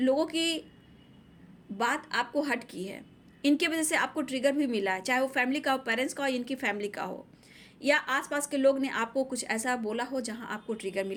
की बात आपको हट की है, इनके वजह से आपको ट्रिगर भी मिला है, चाहे वो फैमिली का हो, पेरेंट्स का हो, इनकी फैमिली का हो, या आसपास के लोग ने आपको कुछ ऐसा बोला हो जहां आपको ट्रिगर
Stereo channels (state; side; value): identical; both; correlation 1.00